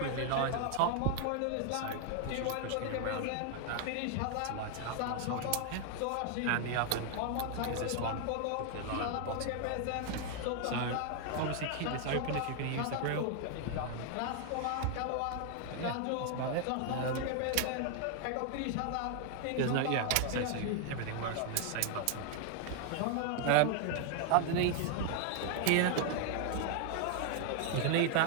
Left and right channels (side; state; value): both; different; correlation 0.00